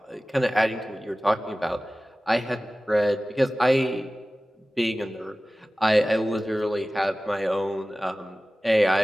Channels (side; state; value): both; normal; correlation 0.97